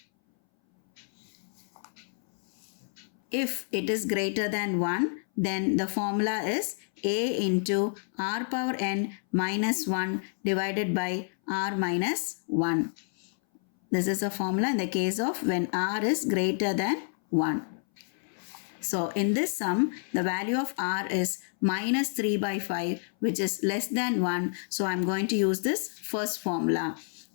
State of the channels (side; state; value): right; silent; 59 dB below the other